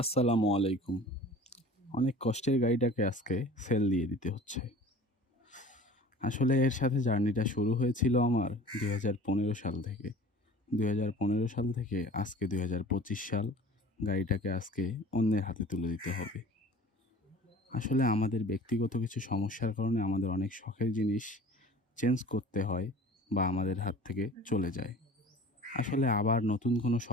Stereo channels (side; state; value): both; normal; correlation 0.44